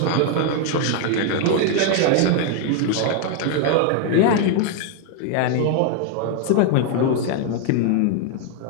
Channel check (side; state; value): both; different; correlation 0.00